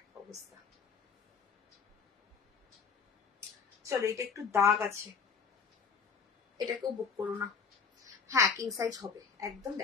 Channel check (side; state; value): right; quieter; 5.9 dB